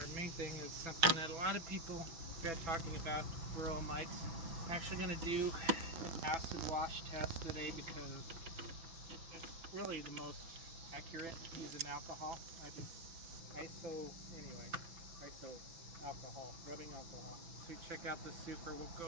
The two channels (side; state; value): left; late; 6.1 ms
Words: our main thing is something that a lot of people are talking about, varroa mites. I'm actually going to do an acid wash test today because it's really the most accurate using alcohol. I think ISO alcohol, rubbing alcohol. So we check out the super, we'll